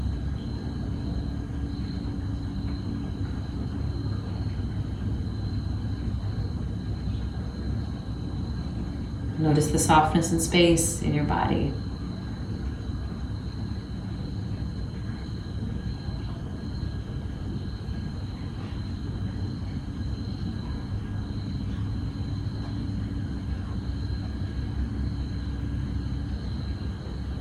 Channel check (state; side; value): identical; both; correlation 1.00